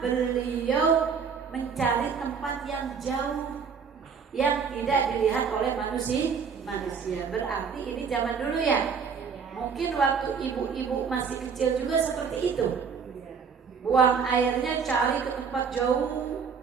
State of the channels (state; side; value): quieter; left; 6.2 dB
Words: beliau mencari tempat yang jauh yang tidak dilihat oleh manusia. Berarti ini zaman dulu ya. Mungkin waktu ibu-ibu masih kecil juga seperti itu. Buang airnya cari ke tempat jauh.